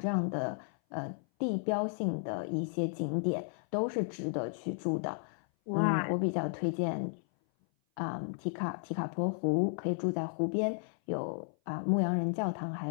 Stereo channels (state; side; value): silent; right; 55 dB below the other